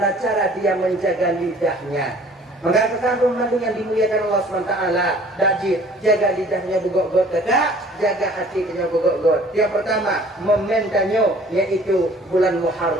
cara dia menjaga lidahnya. Maka kekandung yang dimuliakan Allah SWT, dajit, jaga lidahnya bugok-got, tidak, jaga hatinya bugok-got. Yang pertama, momentannya, yaitu bulan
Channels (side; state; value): both; normal; correlation 0.52